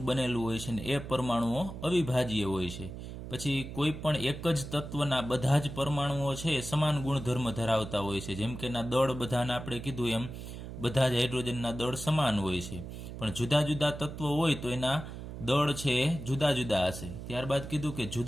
બનેલું હોય છે ને એ પરમાણુઓ અવિભાજ્ય હોય છે. પછી કોઈ પણ એક જ તત્વના બધા જ પરમાણુઓ છે સમાન ગુણધર્મ ધરાવતા હોય છે. જેમ કે એના દળ બધાના આપણે કીધું એમ બધા જ હાઇડ્રોજનના દળ સમાન હોય છે, પણ જુદા જુદા તત્વો હોય તો એના દળ છે એ જુદા જુદા હશે. ત્યારબાદ કીધું કે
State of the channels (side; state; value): right; noise; hum, 10 dB below the sound